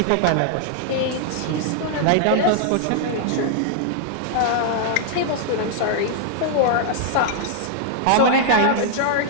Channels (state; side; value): different; both; correlation -0.01